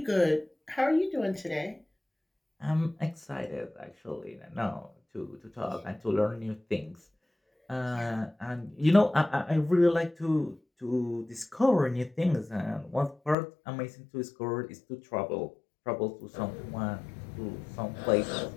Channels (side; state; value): right; drops out; at 13.4 s